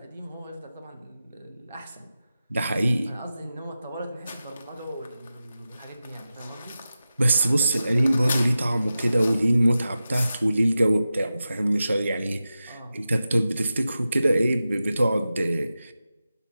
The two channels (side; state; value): both; inverted; correlation -0.92